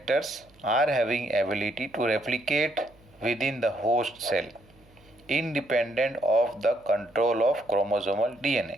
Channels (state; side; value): noise; right; hum, 29 dB below the sound